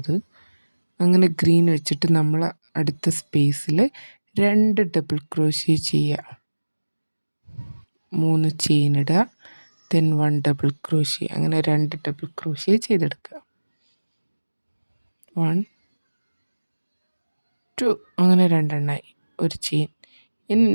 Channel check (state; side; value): inverted; both; correlation -1.00